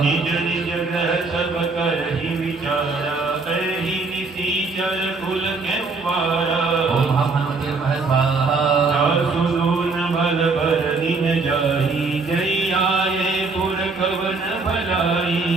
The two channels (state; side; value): quieter; left; 4.0 dB